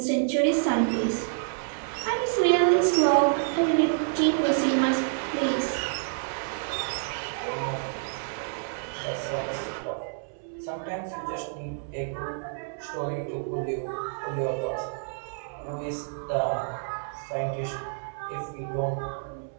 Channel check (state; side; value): silent; left; 59 dB below the other